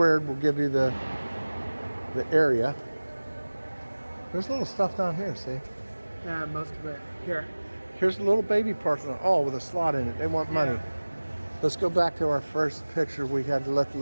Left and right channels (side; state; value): both; inverted; correlation -1.00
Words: will give you the area. There's little stuff down here, see? Yeah, most of it. Here. Here's a little baby Parthenon. Oh, with a slot in it. They want money. Yeah. Let's go back to our first picture. We had to let the